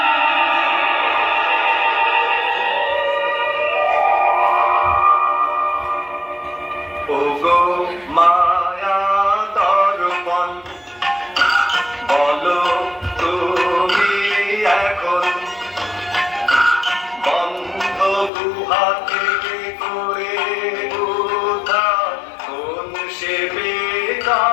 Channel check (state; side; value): drops out; right; at 18.3 s